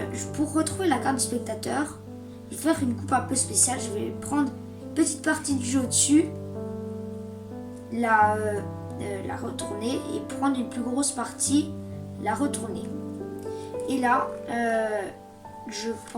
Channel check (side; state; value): both; identical; correlation 1.00